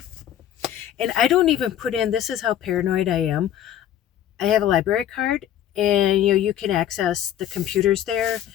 And I don't even put in, this is how paranoid I am. I have a library card, and you can access the computers there,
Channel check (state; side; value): quieter; right; 11.1 dB